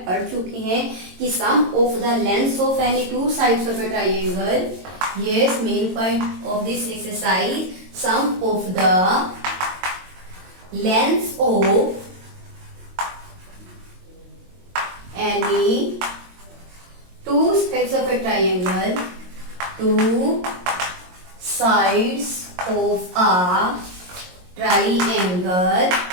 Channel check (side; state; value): left; late; 22 ms